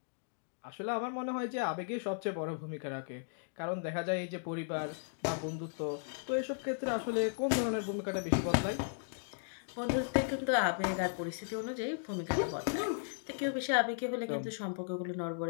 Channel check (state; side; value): silent; right; digital silence